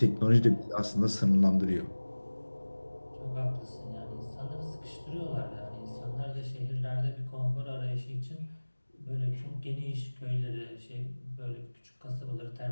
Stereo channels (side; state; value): both; inverted; correlation -1.00